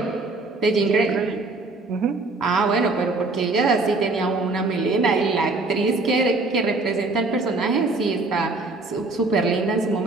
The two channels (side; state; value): left; quieter; 3.3 dB